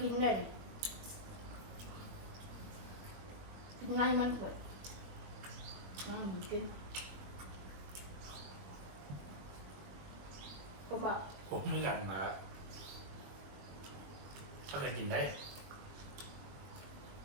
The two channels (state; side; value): late; left; 21 ms